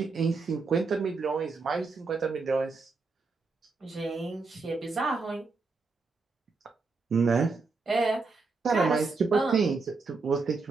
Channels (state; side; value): quieter; left; 4.2 dB